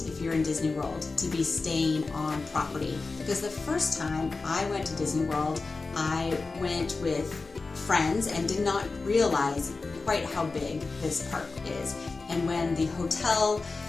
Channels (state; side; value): quieter; right; 3.9 dB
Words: if you're in Disney World, to be staying on property. Because the first time I went to Disney World, I went with friends and did not realize quite how big this park is. And when the hotel